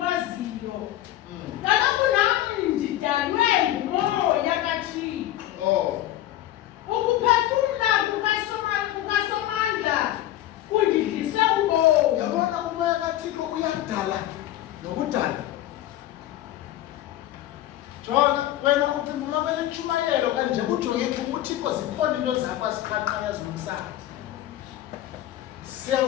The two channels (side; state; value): right; quieter; 13.7 dB